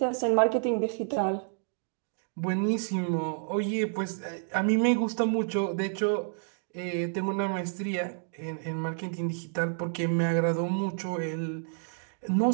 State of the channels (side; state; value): left; silent; digital silence